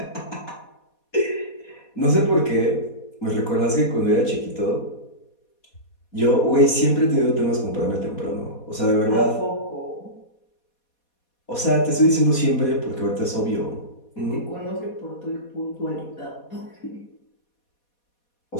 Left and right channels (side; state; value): right; late; 4.2 ms